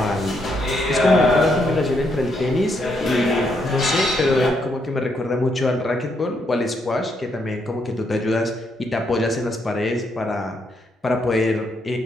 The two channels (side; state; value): both; normal; correlation 0.76